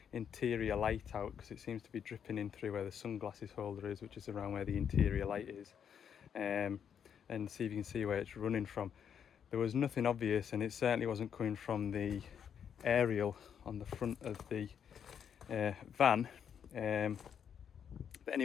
interior light out, because it seems to be dripping in through where the sunglasses holder is, which is around where the interior light is, and see if you can see where it's running from. There was nothing obvious, and it certainly wasn't coming from the aerial on the front of the van. But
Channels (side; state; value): right; quieter; 8.1 dB